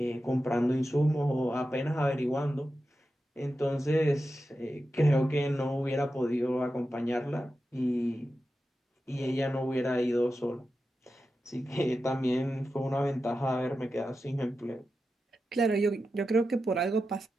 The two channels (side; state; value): both; normal; correlation 0.91